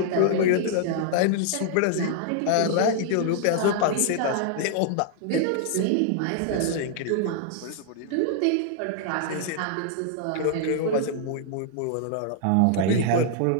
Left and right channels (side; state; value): both; different; correlation -0.01